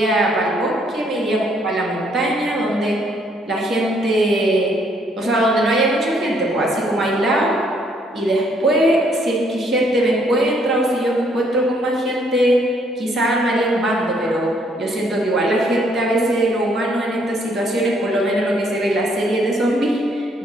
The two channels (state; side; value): normal; both; correlation 0.67